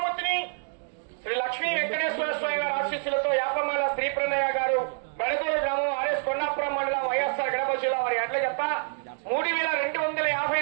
శ్రీ లక్ష్మీ వెంకటేశ్వర స్వామి వారి ఆశీస్సులతో యాపమాల శ్రీ ప్రణయ గారు, బెడదూరు గ్రామం, ఆర్ఎస్ కొండాపురం మండలం, వైఎస్ఆర్ కడప జిల్లా వారి అడ్ల జత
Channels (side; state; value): left; silent; 60 dB below the other